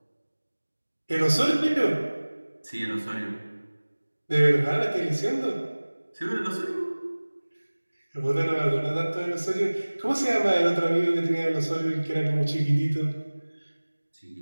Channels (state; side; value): inverted; both; correlation -1.00